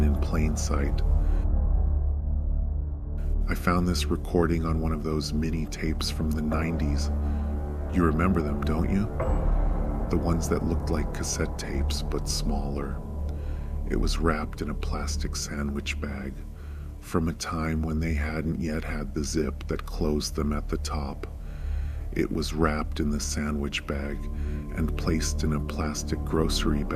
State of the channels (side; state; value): both; identical; correlation 1.00